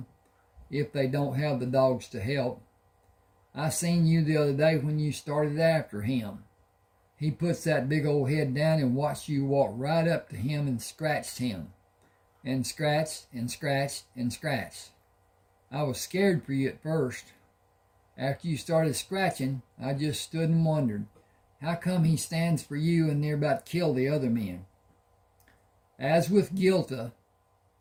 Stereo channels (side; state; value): both; identical; correlation 1.00